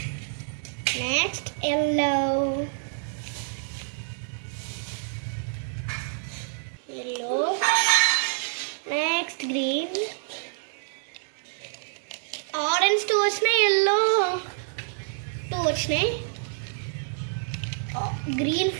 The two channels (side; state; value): left; silent; 60 dB below the other